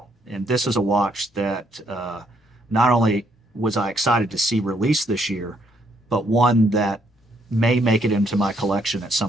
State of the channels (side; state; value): both; normal; correlation 0.71